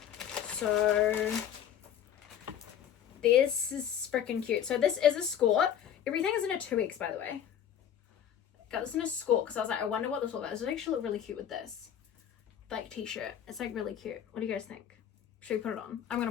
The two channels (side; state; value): right; quieter; 9.4 dB